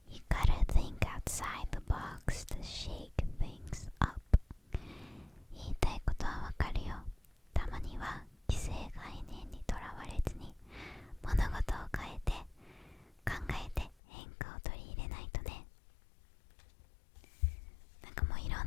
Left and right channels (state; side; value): drops out; right; at 14.0 s